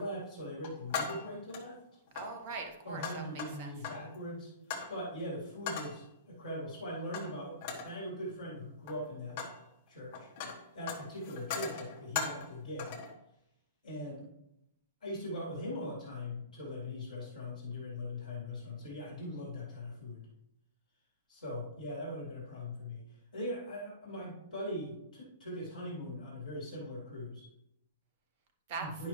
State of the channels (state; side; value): inverted; both; correlation -0.37